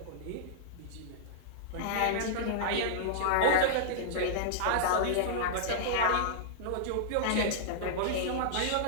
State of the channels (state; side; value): different; both; correlation -0.02